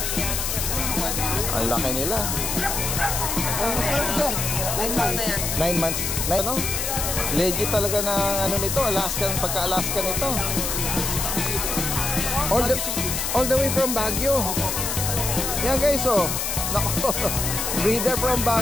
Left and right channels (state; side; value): noise; left; hiss, 1 dB below the sound